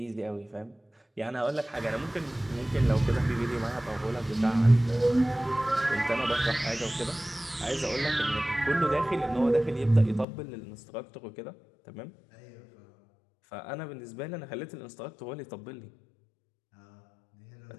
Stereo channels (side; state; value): right; drops out; at 10.2 s